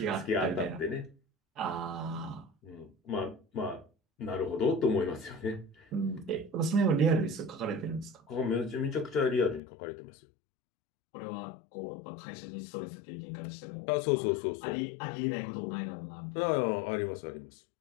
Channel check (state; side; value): drops out; right; at 9.6 s